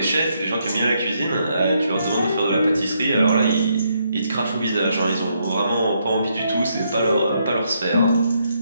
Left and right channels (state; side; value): inverted; both; correlation -0.76